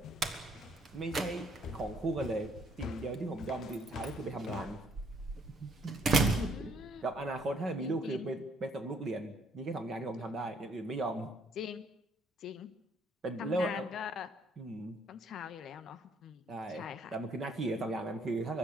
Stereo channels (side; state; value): both; normal; correlation 0.65